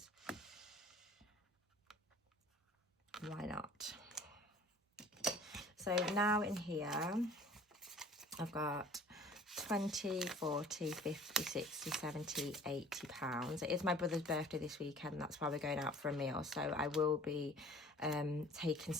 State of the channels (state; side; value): normal; both; correlation 0.48